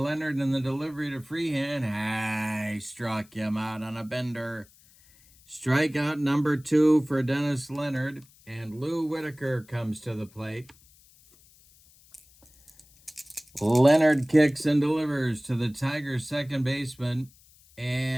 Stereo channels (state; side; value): noise; left; hiss, 28 dB below the sound